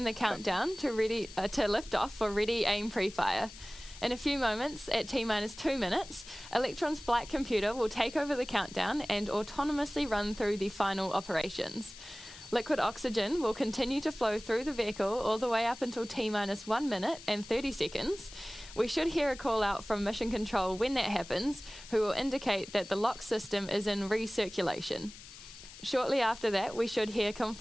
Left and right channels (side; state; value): left; noise; hiss, 16 dB below the sound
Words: the countdown to lift off for ready, aim, pre-fire. In a few moments, at T-minus 2 minutes, Electron's flight computer will take over the countdown and autonomously run through the final operations. Liquid oxygen will continue to flow through the vehicle all the way up until T-minus 1 minute and 30 seconds. We should hear a call out from Mission Control when that happens, who will indicate that the lock system is in recirculation. Shortly after that, we should hear